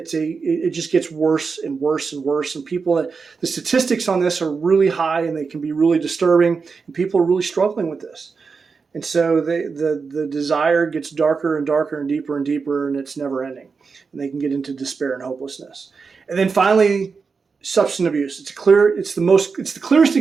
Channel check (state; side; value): quieter; left; 5.1 dB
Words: just gets worse and worse and worse. And the statistics on this are really high, and they can be really disturbing. And people are really struggling with this. And so the desire gets darker and darker and deeper, and it's never ending. And they can get into despair and hopelessness. And then finally, substance abuse. It's the clearest